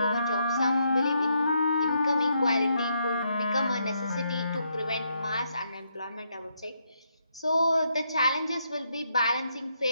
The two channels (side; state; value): both; inverted; correlation -0.77